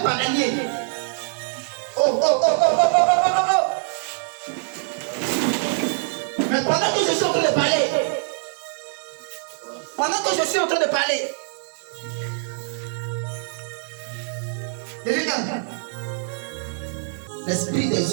bananier. Oh, oh, oh, oh, oh, oh, oh, oh, oh. Mais pendant que je suis en train de parler, regarde, l'esprit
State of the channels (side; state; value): left; silent; digital silence